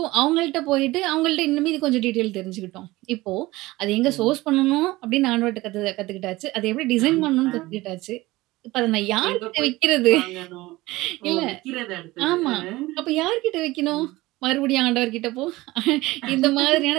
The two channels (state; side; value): quieter; left; 19.4 dB